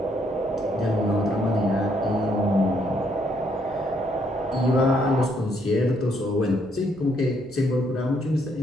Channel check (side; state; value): right; noise; hum, 24 dB below the sound